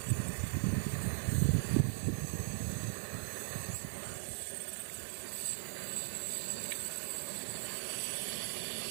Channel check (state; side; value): silent; left; digital silence